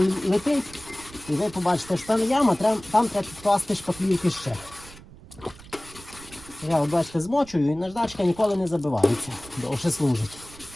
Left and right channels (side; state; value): right; noise; rumble, 20 dB below the sound